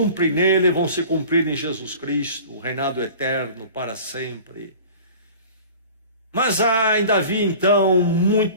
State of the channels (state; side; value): inverted; both; correlation -0.42